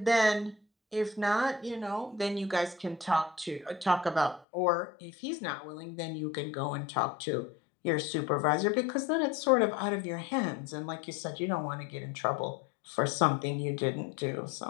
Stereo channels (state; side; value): drops out; right; at 4.5 s